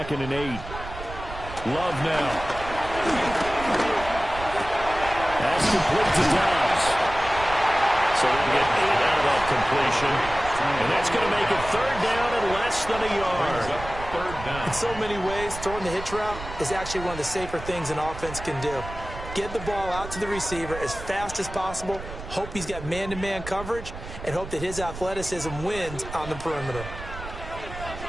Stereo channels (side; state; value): right; noise; rumble, 11 dB below the sound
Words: and 8. Love now. That's complete to Dobbs. So they'll get 8 out of that completion. And that's going to make it 3rd down and less than a yard. In so many ways, throwing the hitch route is actually one of the safer things an offense can do. Get the ball out to the receiver as fast as possible, hope he's got man-to-man coverage, and hope that his athleticism wins on the perimeter.